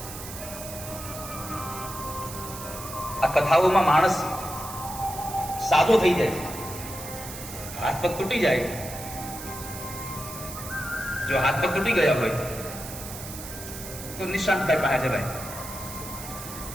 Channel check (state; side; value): noise; right; hiss, 11 dB below the sound